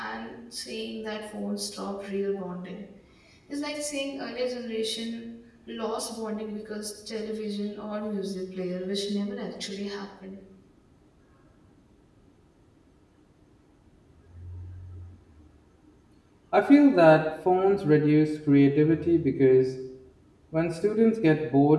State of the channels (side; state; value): both; identical; correlation 1.00